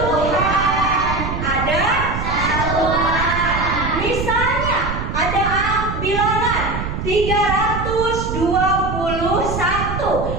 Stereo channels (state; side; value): noise; right; rumble, 5 dB below the sound